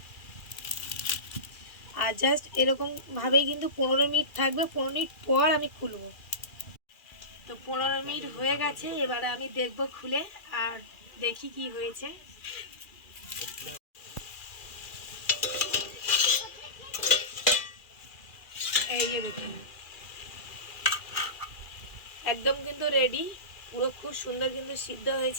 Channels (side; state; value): right; late; 2.4 ms